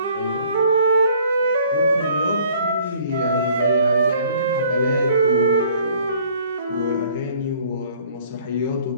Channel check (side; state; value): both; inverted; correlation -0.57